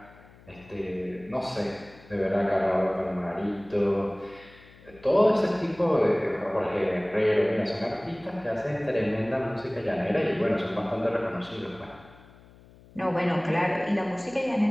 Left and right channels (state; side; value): noise; left; hum, 24 dB below the sound